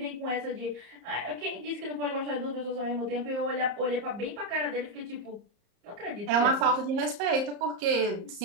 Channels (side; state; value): left; late; 34 ms